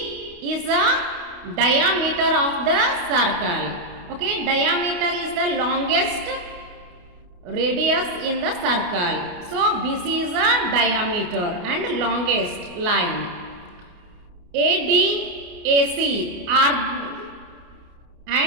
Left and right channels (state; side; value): late; left; 28 ms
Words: is the diameter of the circle. Okay, diameter is the longest radius in the circle. So BC is the diameter and longest line. AD, AC are